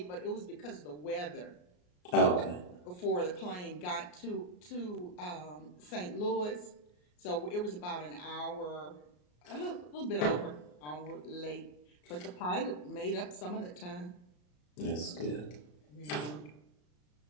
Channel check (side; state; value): right; late; 34 ms